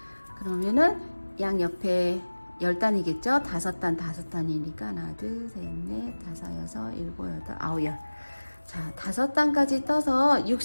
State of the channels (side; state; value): both; inverted; correlation -1.00